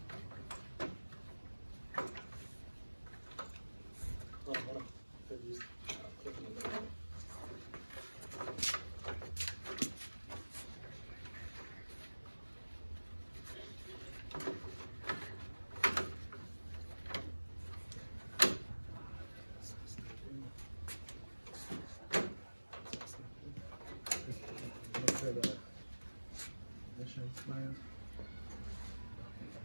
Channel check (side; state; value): both; inverted; correlation -1.00